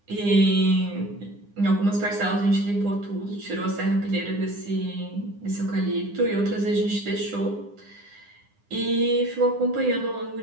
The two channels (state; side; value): late; left; 9.8 ms